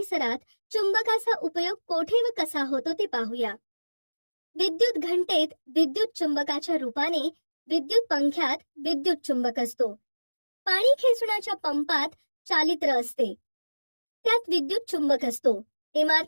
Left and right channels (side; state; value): both; inverted; correlation -1.00